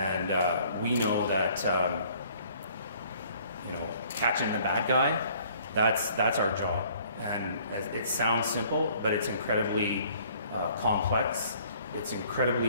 we know that you know, catching the bad guy, that's our job. And it sounds simple, but it's incredibly complex. It's incredibly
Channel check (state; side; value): inverted; both; correlation -0.57